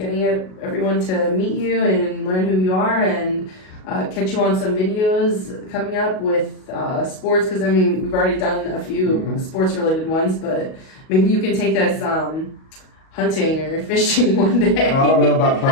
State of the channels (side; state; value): right; late; 38 ms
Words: everyone to meet you and learn who you are and catch you on some videos coming up with sports. Because, I mean, we've already done a few sports-related ones, but maybe you can take us hunting or fishing one day. I don't know about